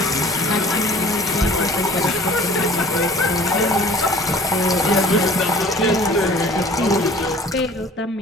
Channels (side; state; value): both; normal; correlation 0.48